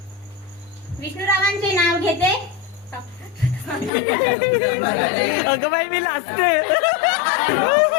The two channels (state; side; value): drops out; right; at 3.9 s